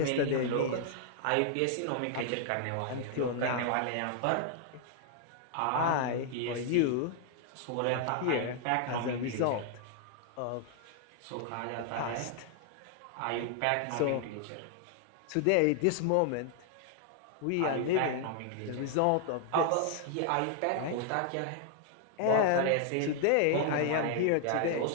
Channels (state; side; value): different; both; correlation 0.00